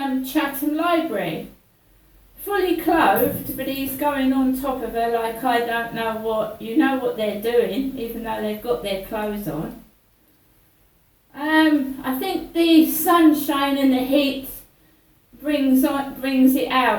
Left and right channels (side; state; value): both; identical; correlation 1.00